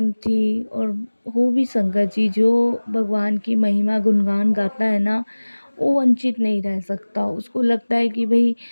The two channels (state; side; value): inverted; both; correlation -1.00